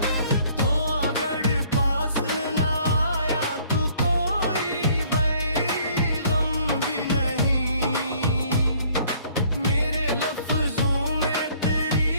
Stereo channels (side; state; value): both; inverted; correlation -0.59